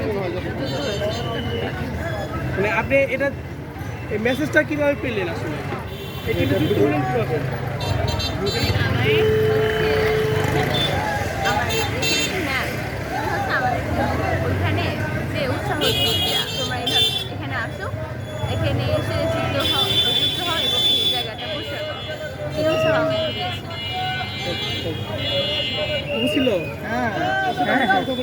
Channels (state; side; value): identical; both; correlation 1.00